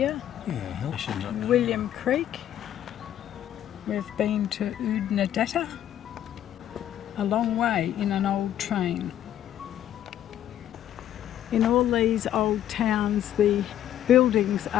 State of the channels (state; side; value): quieter; right; 11.3 dB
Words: William Creek. We've been to Oodnadatta, a long way in an old train. In all these old towns, the buildings